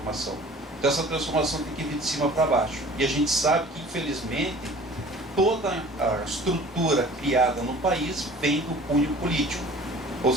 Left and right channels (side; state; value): both; normal; correlation 0.46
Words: Então essa transformação tem que vir de cima para baixo. E a gente sabe que, infelizmente, toda a estrutura criada no país vem do cunho político. Ou